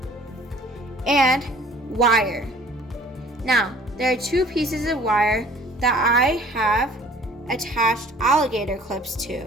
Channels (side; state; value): both; normal; correlation 0.52